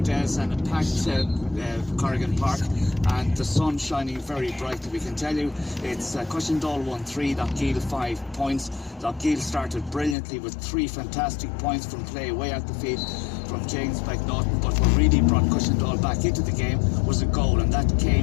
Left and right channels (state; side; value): drops out; right; at 10.2 s